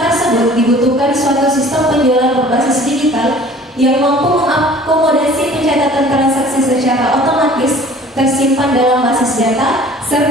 tersebut dibutuhkan suatu sistem penjualan berbasis digital yang mampu mengakomodasi pencatatan transaksi secara otomatis, tersimpan dalam basis data,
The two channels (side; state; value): both; normal; correlation 0.49